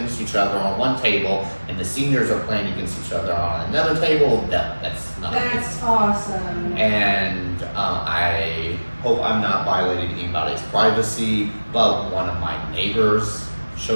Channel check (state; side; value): inverted; both; correlation -1.00